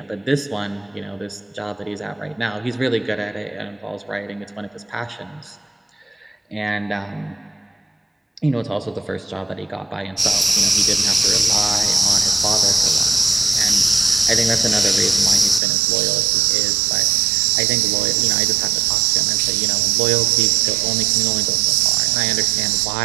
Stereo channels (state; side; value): drops out; left; at 15.6 s